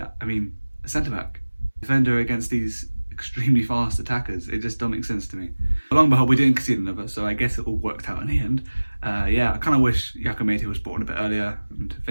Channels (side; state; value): both; inverted; correlation -1.00